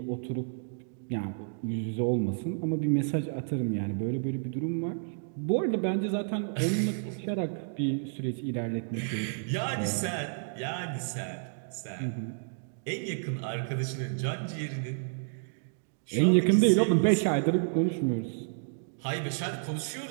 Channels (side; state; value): left; silent; digital silence